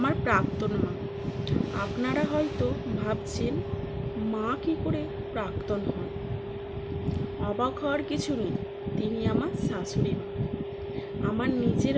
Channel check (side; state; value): both; identical; correlation 1.00